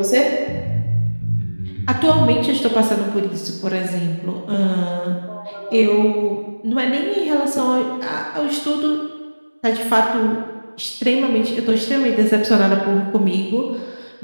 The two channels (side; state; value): both; inverted; correlation -1.00